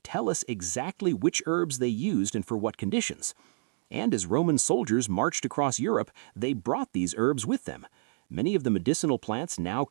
tell us exactly which herbs they used and for what conditions. And as Roman soldiers marched across Europe, they brought these herbs with them. Many of the medicinal plants now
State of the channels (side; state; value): left; silent; digital silence